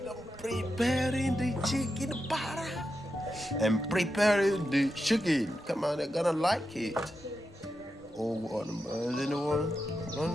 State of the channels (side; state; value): both; normal; correlation 0.88